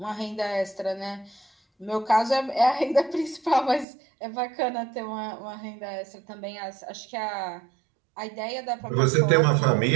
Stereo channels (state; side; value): drops out; left; at 3.9 s